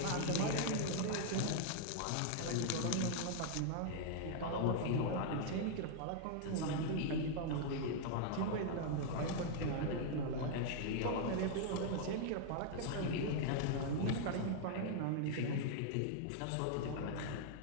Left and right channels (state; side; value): different; both; correlation -0.01